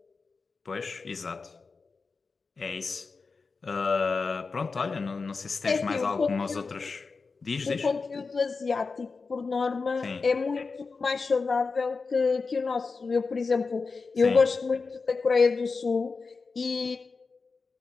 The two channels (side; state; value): right; quieter; 4.5 dB